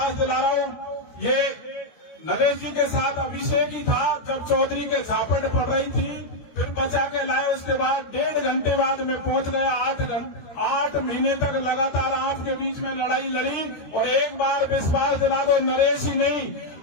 दिला रहा हूँ, ये नरेश जी के साथ अभिषेक ही था जब चौधरी के झापट पड़ रही थी, फिर बचा के लाए, उसके बाद 1.5 घंटे बाद में पहुंच गया। 8 महीने तक लगातार आपके बीच में लड़ाई लड़ी, और एक बार विश्वास दिला दो, नरेश ही नहीं,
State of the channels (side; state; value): right; late; 13 ms